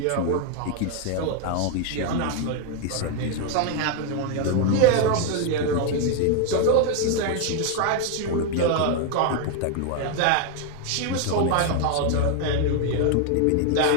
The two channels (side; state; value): both; different; correlation 0.01